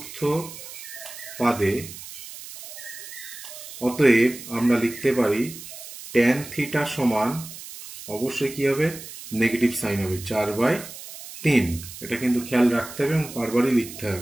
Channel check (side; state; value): right; noise; hiss, 13 dB below the sound